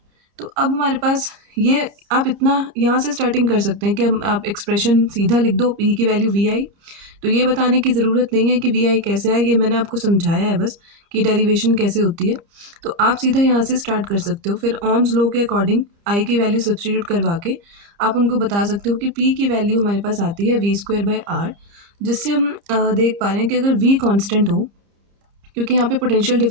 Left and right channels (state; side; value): late; left; 30 ms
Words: तो अब हमारे पास ये, आप इतना यहाँ से स्टार्टिंग कर सकते हैं कि हम आप एक्सप्रेशन सीधा लिख दो P की वैल्यू VI। तो ये बताने की ज़रूरत नहीं है कि VI कैसे आए, ये मैंने आपको समझाया है बस कि डेरिवेशन कैसे होती है। तो आप सीधा यहाँ से स्टार्ट कर सकते हो। फिर ओम्स लॉ के अकॉर्डिंग I की वैल्यू सब्सटीट्यूट करवा के आप उनको बता सकते हो कि P की वैल्यू हमारे पास आती है V स्क्वायर बाई आर, जिससे हम देख पा रहे हैं कि अगर V कांस्टेंट हो, क्योंकि यहाँ पे पोटेंशियल